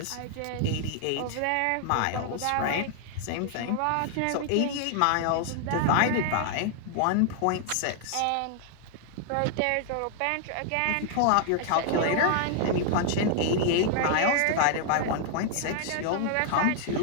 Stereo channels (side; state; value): both; different; correlation 0.00